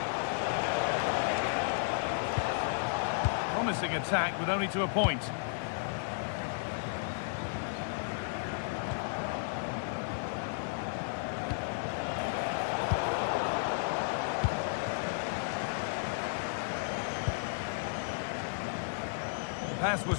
Promising attack with only to a point. pass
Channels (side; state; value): right; silent; 55 dB below the other